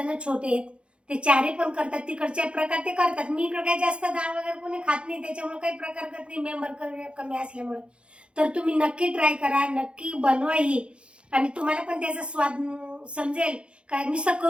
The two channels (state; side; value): late; left; 0.058 ms